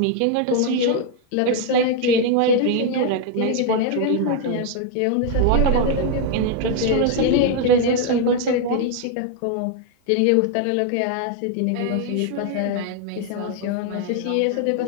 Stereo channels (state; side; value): different; both; correlation 0.00